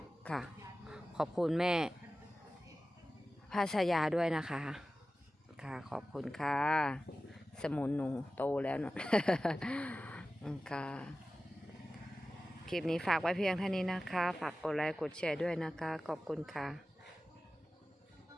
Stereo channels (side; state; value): both; normal; correlation 0.95